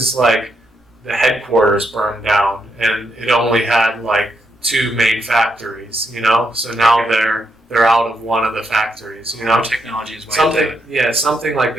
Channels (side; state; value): both; normal; correlation 0.80